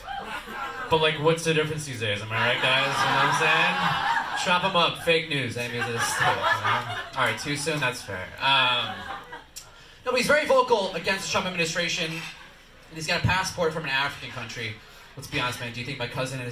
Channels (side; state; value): both; identical; correlation 1.00